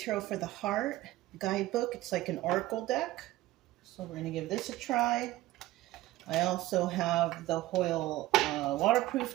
for the Heart guidebook. It's like an oracle deck. So we're going to give this a try. I also have the Hoyle waterproof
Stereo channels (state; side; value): quieter; left; 16.7 dB